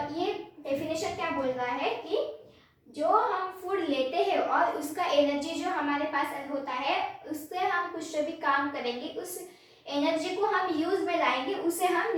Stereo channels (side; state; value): both; identical; correlation 1.00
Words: ये definition क्या बोल रहा है कि जो हम food लेते हैं और उसका एनर्जी जो हमारे पास होता है, उससे हम कुछ भी काम करेंगे, उस एनर्जी को हम यूज में लाएंगे, उसे हम